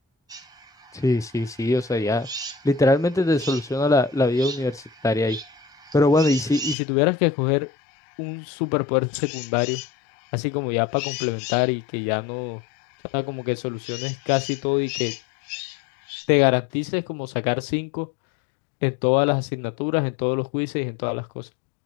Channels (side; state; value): right; drops out; at 6.8 s